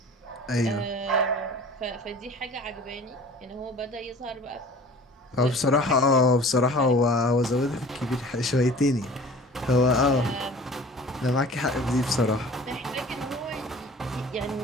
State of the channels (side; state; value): both; normal; correlation 0.44